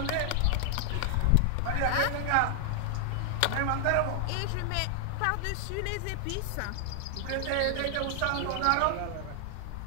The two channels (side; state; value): both; different; correlation 0.00